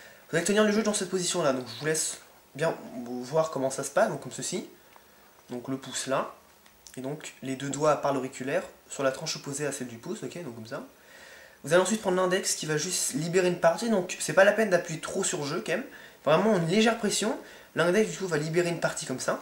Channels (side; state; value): both; identical; correlation 1.00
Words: Vous allez tenir le jeu dans cette position-là. Donc, je vous laisse bien voir comment ça se passe. Donc, comme ceci. Donc, le pouce là. Et donc, les deux doigts par l'auriculaire sur la tranche opposée à celle du pouce. Ok, donc comme ça. Vous allez ensuite prendre l'index qui va juste libérer une partie. Donc, c'est pas la peine d'appuyer trop sur jeu quand même. Vraiment une légère pression. L'index du coup va libérer une partie comme